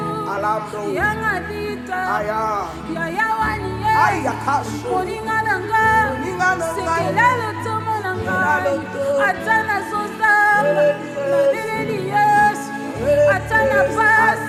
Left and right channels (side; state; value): both; identical; correlation 1.00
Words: yanga dita yaya wani moninga na nga sekela lotomo na ngai ata nazozamba nabeleli yesu ata na